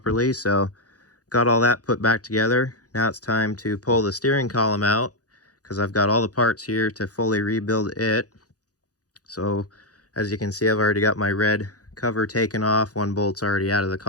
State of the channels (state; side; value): late; right; 0.67 ms